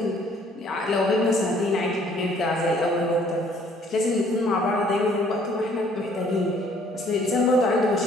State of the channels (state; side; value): normal; both; correlation 0.60